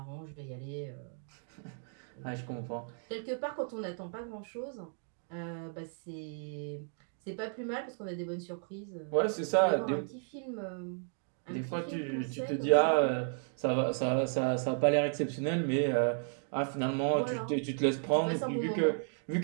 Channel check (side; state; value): left; silent; 55 dB below the other